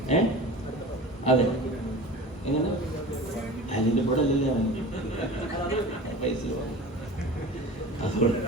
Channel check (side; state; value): both; normal; correlation 0.36